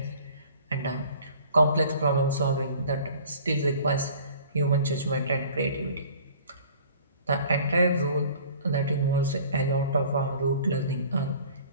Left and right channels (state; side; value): inverted; both; correlation -0.49